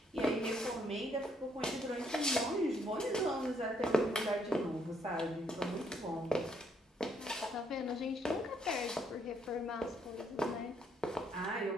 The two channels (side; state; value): both; normal; correlation 0.71